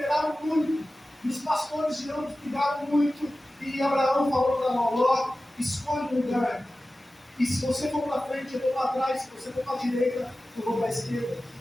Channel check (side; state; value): both; normal; correlation 0.95